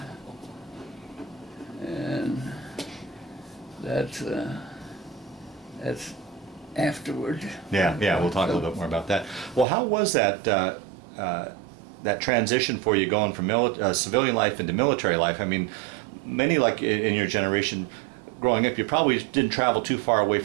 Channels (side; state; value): left; drops out; at 9.7 s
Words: and that's afterward. Yeah, yeah, we'll talk a little bit more about that. Well, how was that that transition for you going from civilian life into military life? I mean, many like in your generation, growing up, you probably didn't travel too far away